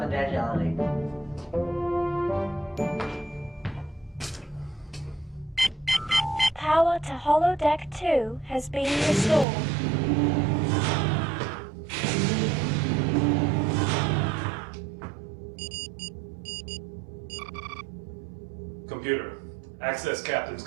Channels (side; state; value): left; drops out; at 9.5 s